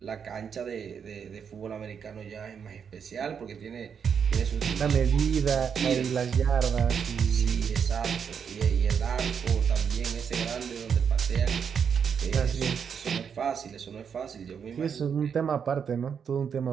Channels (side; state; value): left; quieter; 7.1 dB